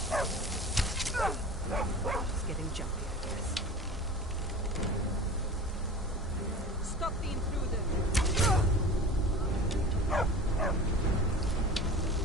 It's getting jumpy, I guess. Stop the intruder!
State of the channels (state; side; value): normal; both; correlation 0.37